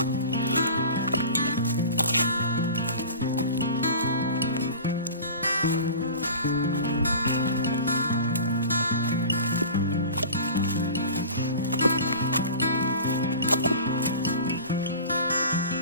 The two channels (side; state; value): both; inverted; correlation -0.38